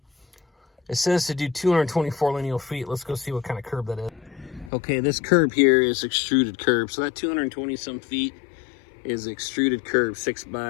it says to do 224 lineal feet. Let's go see what kind of curb that is. Okay, this curb here is extruded curb. So that 220 some feet is extruded curb,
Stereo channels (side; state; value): right; drops out; at 4.7 s